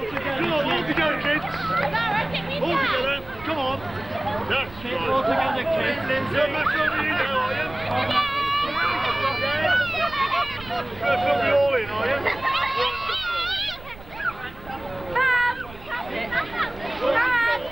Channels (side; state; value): right; noise; rumble, 18 dB below the sound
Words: Come on, all together, kids. All together. Come on. That's right. All together, kids. You're not filming you now, are you? You're going to film me all in, are you?